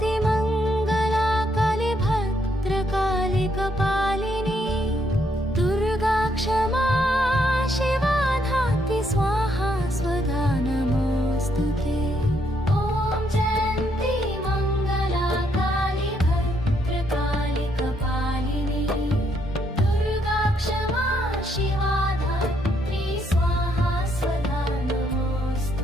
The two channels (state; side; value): normal; both; correlation 0.73